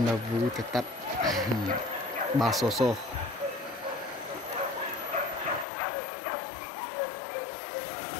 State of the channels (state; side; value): drops out; right; at 5.7 s